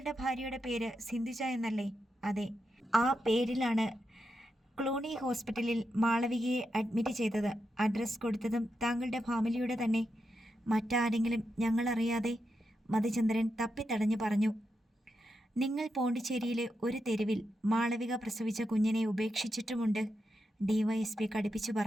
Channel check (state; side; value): normal; both; correlation 0.86